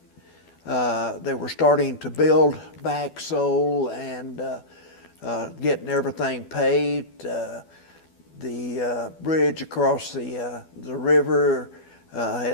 they were starting to build back Seoul and getting everything paved. The bridge across the river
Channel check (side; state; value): right; late; 12 ms